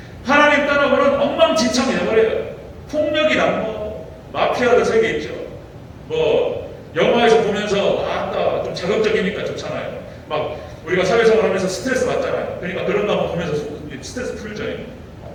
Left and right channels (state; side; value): identical; both; correlation 1.00